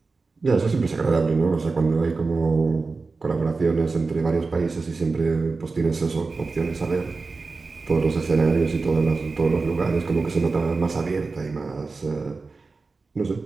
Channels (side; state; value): left; quieter; 4.0 dB